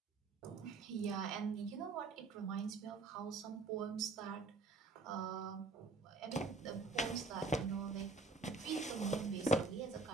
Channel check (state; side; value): quieter; left; 3.8 dB